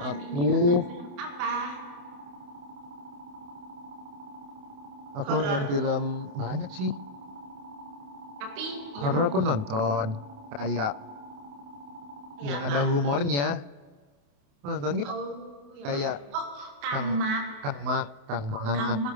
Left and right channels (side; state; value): left; late; 28 ms